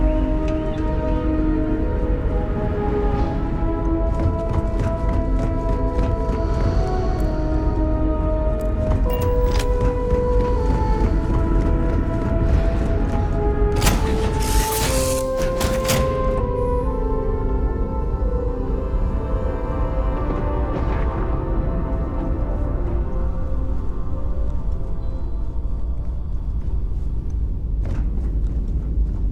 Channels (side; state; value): both; identical; correlation 1.00